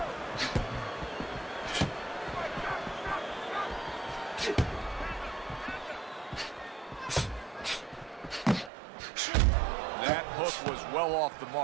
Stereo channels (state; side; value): drops out; left; at 8.7 s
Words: That hook was well off the